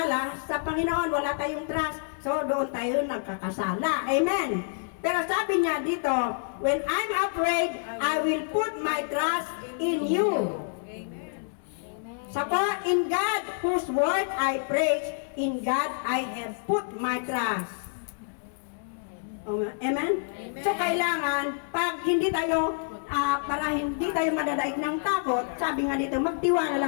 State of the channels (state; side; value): silent; right; digital silence